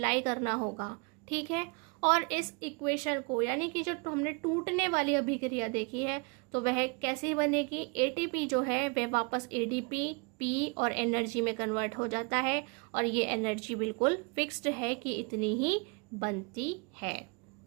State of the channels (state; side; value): quieter; left; 32.2 dB